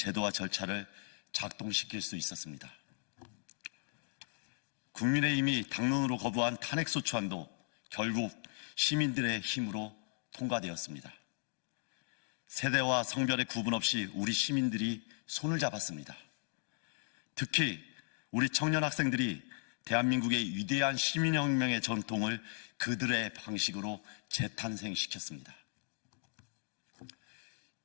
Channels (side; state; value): right; silent; digital silence